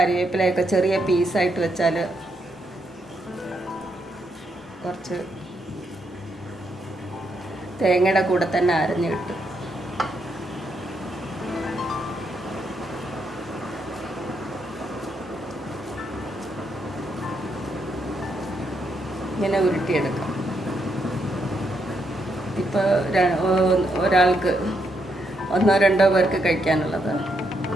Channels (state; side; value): normal; both; correlation 0.78